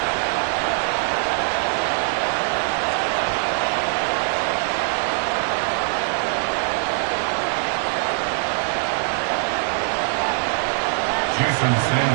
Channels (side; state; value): left; silent; 58 dB below the other